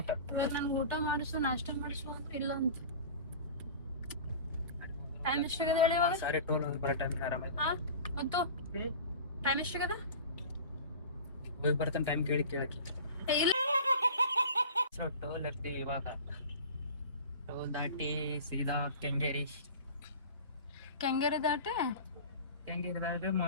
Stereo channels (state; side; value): inverted; both; correlation -0.36